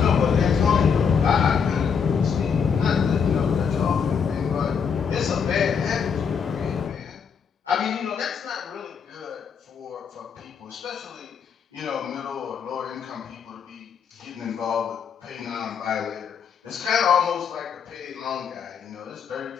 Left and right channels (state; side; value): quieter; right; 6.7 dB